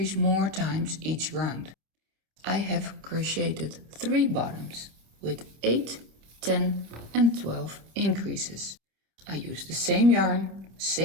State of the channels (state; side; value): late; left; 27 ms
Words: more times each round. I have crocheted 3 bottoms with 8, 10 and 12 increases. I used the same yarn,